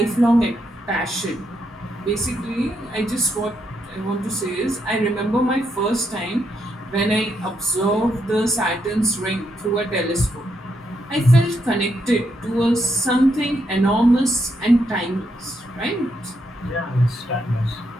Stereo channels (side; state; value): both; normal; correlation 0.79